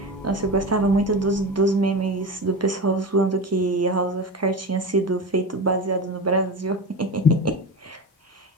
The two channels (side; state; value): both; normal; correlation 0.25